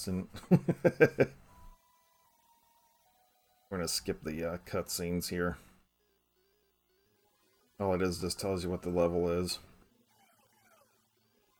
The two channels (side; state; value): both; identical; correlation 1.00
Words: We're gonna skip the cutscenes here. All it is just tells you what the level is.